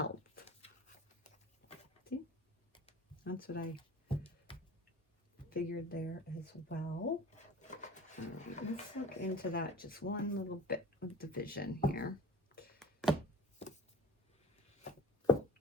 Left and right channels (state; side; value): normal; both; correlation 0.40